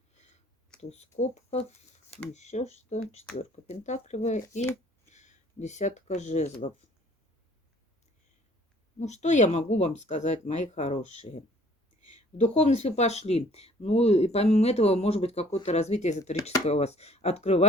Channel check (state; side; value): normal; both; correlation 0.57